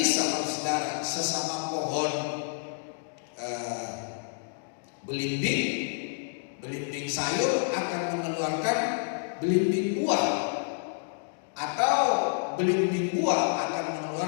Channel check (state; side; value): silent; right; digital silence